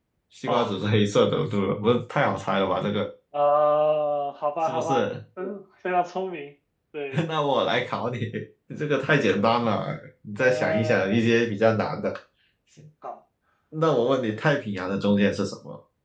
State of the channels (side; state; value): both; identical; correlation 1.00